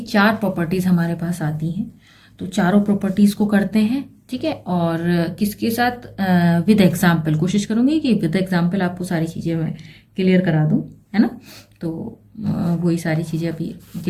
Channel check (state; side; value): identical; both; correlation 1.00